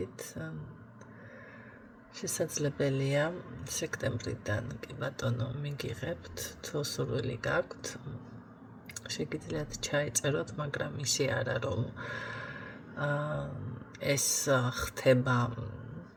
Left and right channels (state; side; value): identical; both; correlation 1.00